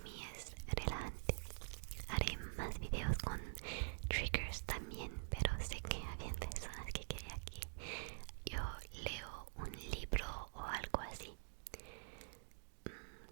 mí es relajante. Haré más videos con triggers también, pero sé que habían personas que querían que yo leo un libro o algo así.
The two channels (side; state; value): left; silent; digital silence